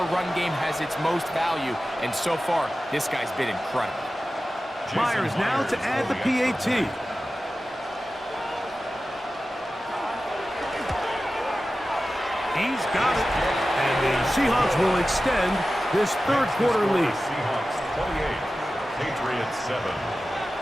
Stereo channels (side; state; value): both; normal; correlation 0.94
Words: run game has its most value, and so far, this guy's been incredible. Myers now to add the PAT. He's got it, and the Seahawks will extend this 3rd quarter lead. Seahawks 28, Patriots 7.